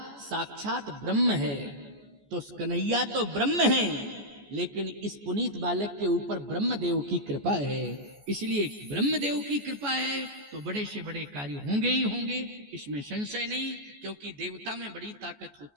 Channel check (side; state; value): left; late; 14 ms